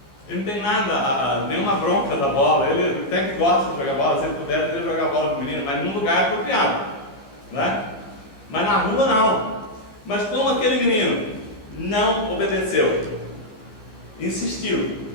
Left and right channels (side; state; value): right; late; 14 ms